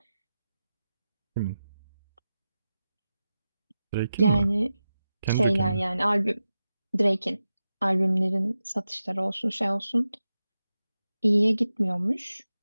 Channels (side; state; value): both; inverted; correlation -0.92